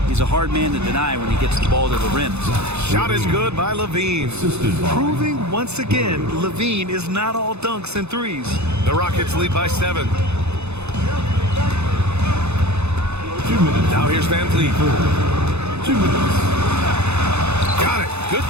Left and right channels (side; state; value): left; late; 0.81 ms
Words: He's a hard man to deny when he gets the ball to the rim. Shot is good by Levine. Proving once again, Levine is not all dunks and threes. The Rockets lead by 7. Now here's Van Vliet. 2 minutes. Got it. Good